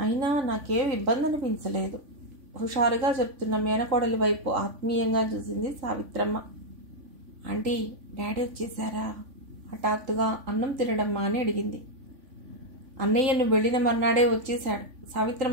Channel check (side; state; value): left; late; 3.5 ms